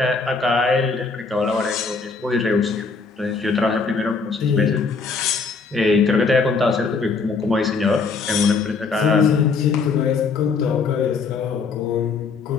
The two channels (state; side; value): quieter; right; 4.7 dB